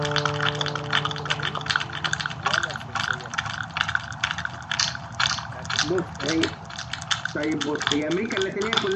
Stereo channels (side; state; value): both; identical; correlation 1.00